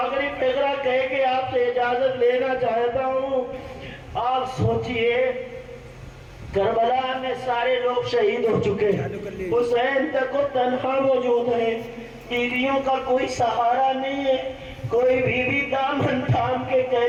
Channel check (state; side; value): identical; both; correlation 1.00